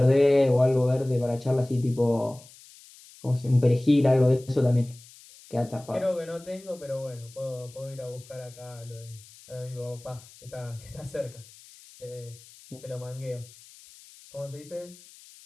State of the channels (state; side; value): noise; left; hiss, 22 dB below the sound